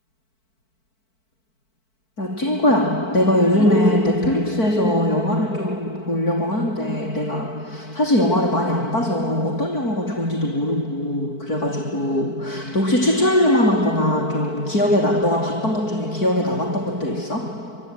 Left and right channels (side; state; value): right; late; 4.5 ms